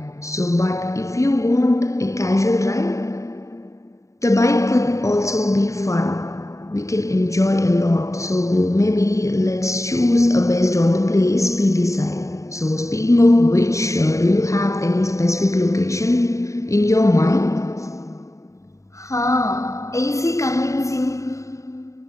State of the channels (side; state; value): right; late; 0.15 ms